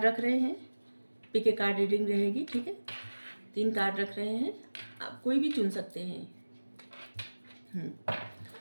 रख रहे हैं, पिक ए कार्ड रीडिंग रहेगी। ठीक है, 3 कार्ड रख रहे हैं, आप कोई भी चुन सकते हैं।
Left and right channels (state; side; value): inverted; both; correlation -1.00